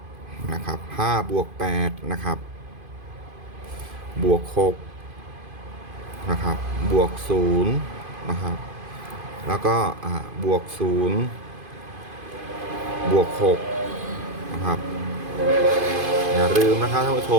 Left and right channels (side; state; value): left; late; 2.5 ms